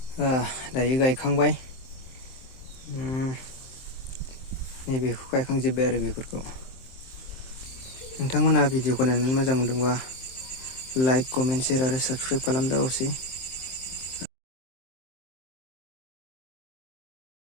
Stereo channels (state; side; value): late; right; 23 ms